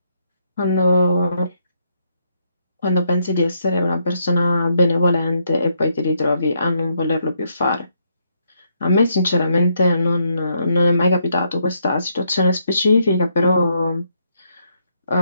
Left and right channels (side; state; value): both; inverted; correlation -0.76